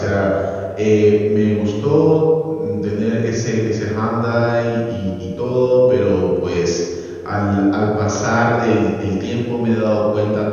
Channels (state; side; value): identical; both; correlation 1.00